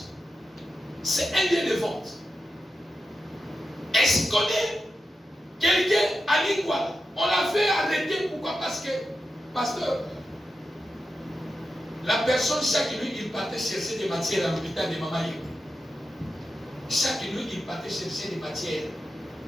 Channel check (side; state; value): both; normal; correlation 0.90